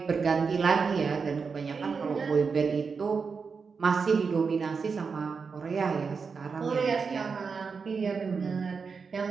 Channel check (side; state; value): left; quieter; 5.3 dB